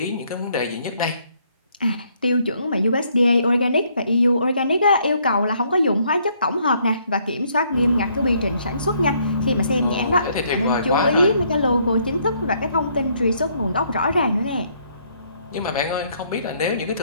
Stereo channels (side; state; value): both; inverted; correlation -0.69